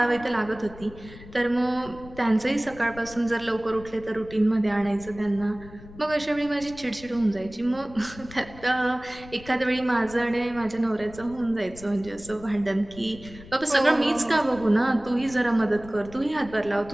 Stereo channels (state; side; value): noise; left; rumble, 18 dB below the sound